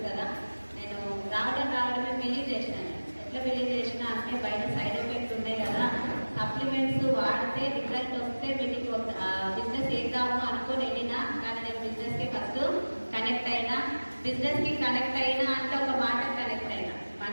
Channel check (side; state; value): both; inverted; correlation -1.00